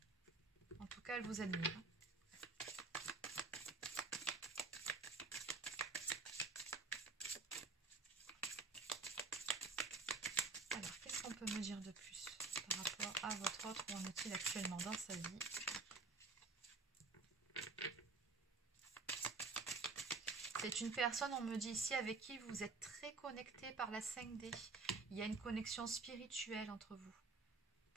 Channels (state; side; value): quieter; left; 4.0 dB